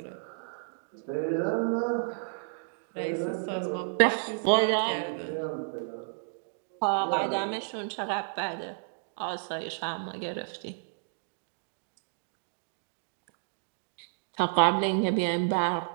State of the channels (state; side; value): silent; left; digital silence